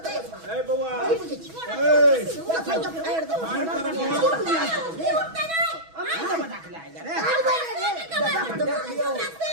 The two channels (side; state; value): left; late; 6.2 ms